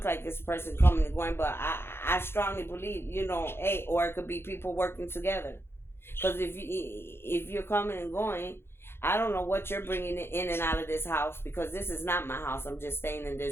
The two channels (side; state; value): right; late; 0.11 ms